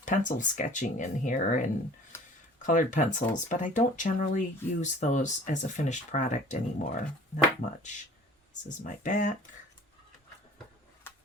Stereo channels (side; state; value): both; normal; correlation 0.47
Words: pencil sketching in here and colored pencils, but I don't generally use those as a finished product anymore. Not much. This is my back.